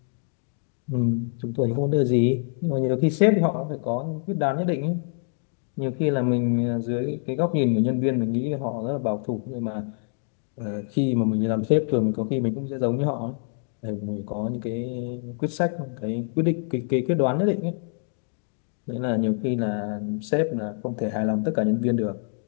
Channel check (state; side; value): silent; right; 60 dB below the other